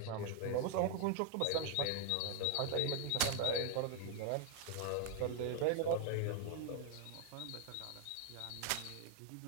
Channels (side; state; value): both; different; correlation 0.00